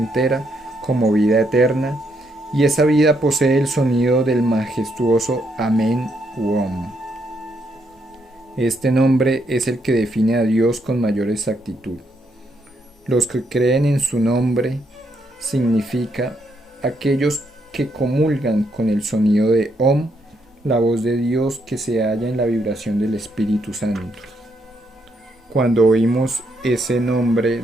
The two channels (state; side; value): normal; both; correlation 0.76